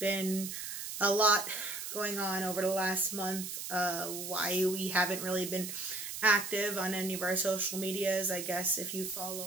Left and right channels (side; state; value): right; noise; hiss, 6 dB below the sound